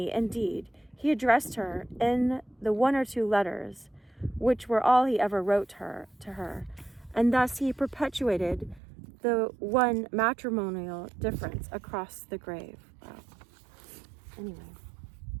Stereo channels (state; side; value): drops out; left; at 8.8 s